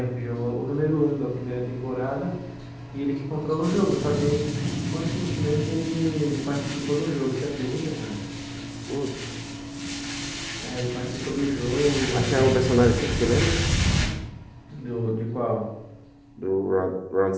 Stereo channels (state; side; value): identical; both; correlation 1.00